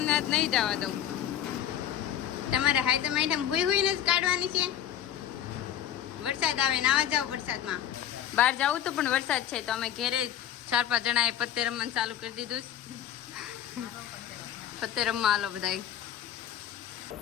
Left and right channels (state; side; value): quieter; right; 10.5 dB